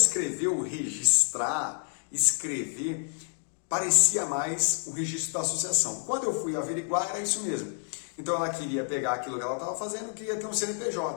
registrar, escrever, parecia mais o registro da associação. Quando eu fui averiguar, era isso mesmo. Então ela queria pegar aquilo que ela estava fazendo, queria ter um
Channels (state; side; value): silent; right; 59 dB below the other